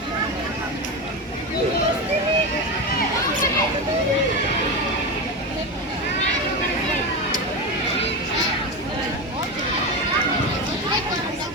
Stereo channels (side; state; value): both; normal; correlation 0.18